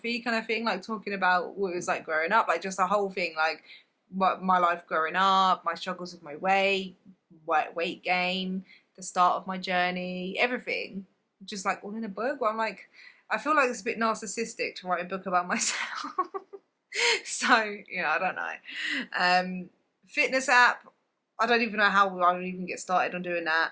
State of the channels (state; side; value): identical; both; correlation 1.00